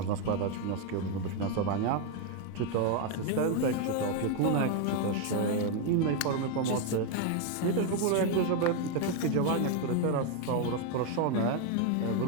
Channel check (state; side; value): different; both; correlation 0.01